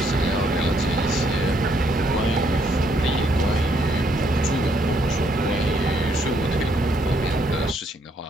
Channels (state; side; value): normal; both; correlation 0.71